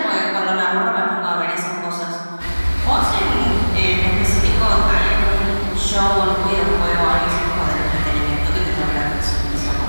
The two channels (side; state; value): both; inverted; correlation -1.00